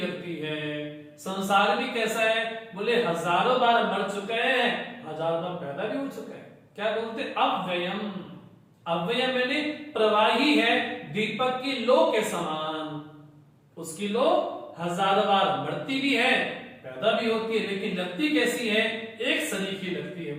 है। संसार भी कैसा है? बोले हजारों बार मर चुका है, हजार बार पैदा भी हो चुका है। क्या बोलते? अव्ययम। अव्ययम मैंने प्रवाही है, दीपक की लो के समान। उसकी लो हजार बार मरती भी है, पैदा भी होती है, लेकिन लगती कैसी है? एक सरीखी लगती है,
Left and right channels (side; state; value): both; identical; correlation 1.00